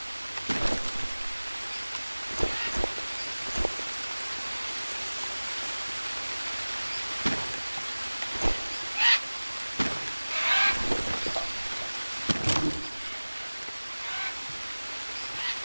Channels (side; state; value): both; inverted; correlation -1.00